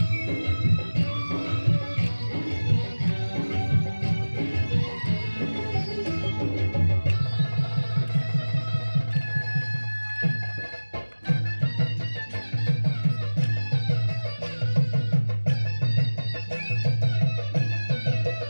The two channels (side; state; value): both; inverted; correlation -1.00